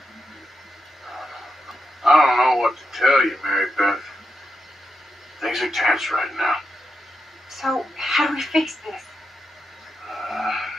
I don't know what to tell you, Mary Beth. Things are tense right now. So, how do we fix this?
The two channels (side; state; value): both; normal; correlation 0.86